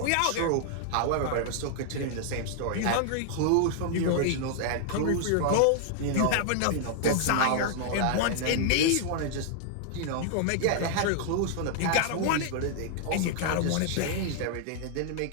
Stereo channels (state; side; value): different; both; correlation 0.00